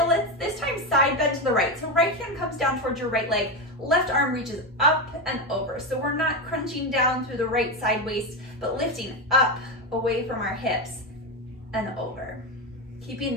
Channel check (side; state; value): both; normal; correlation 0.13